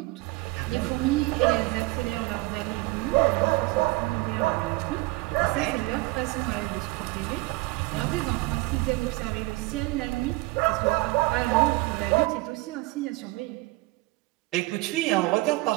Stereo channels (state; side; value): quieter; left; 22.6 dB